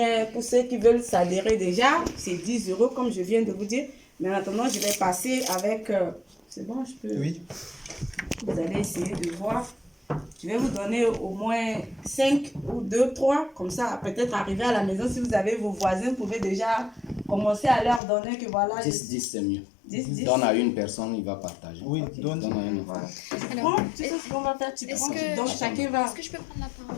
pour ceux qui veulent s'adhérer déjà, c'est 10 euros comme je viens de vous dire. Mais en attendant, je vais passer avec... c'est bon, je peux... Oui. Vous allez essayer de voir. Je vais vous donner au moins 5 ou 2, 3. Comme ça, peut-être arriver à la maison, si vous avez vos voisins, vous pouvez déjà commencer à leur donner que voilà... 10, c'est mieux. 10. Donne à une personne, il va partager. Oui, Ok. donne. Donne à un enfant. Voilà. Tu Alors, prends, tu sais ce qu'on va faire, tu prends, donc chacun va... Est-ce que je peux prendre la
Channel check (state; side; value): drops out; right; at 18.0 s